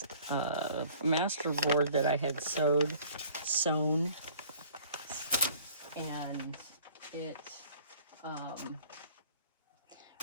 master board that I had sewn, and it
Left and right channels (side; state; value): both; inverted; correlation -0.52